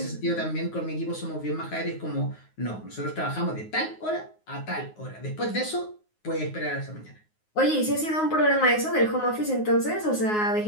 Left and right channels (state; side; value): late; right; 9.5 ms